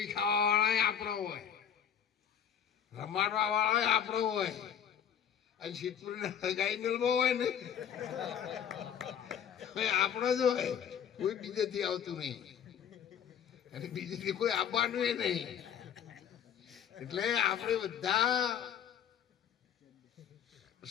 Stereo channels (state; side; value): quieter; right; 8.7 dB